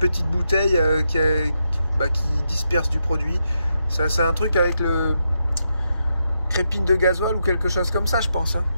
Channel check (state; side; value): inverted; both; correlation -0.83